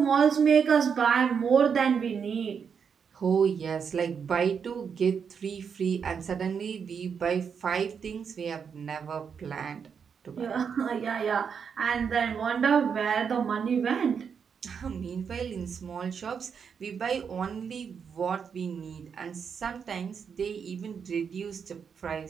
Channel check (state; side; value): quieter; left; 6.7 dB